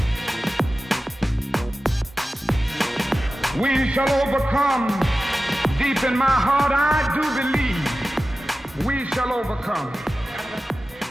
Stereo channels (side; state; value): both; normal; correlation 0.95